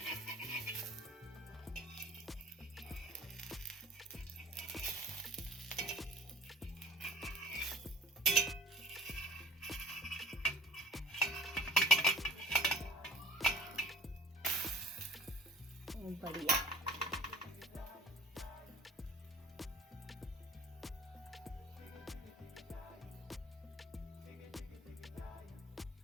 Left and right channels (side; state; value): both; normal; correlation 0.44